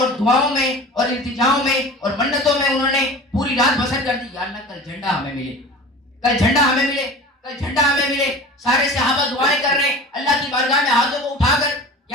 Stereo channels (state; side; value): normal; both; correlation 0.38